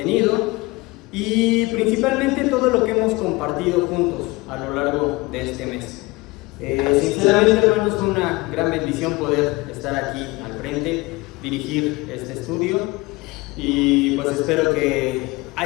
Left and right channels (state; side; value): quieter; right; 22.8 dB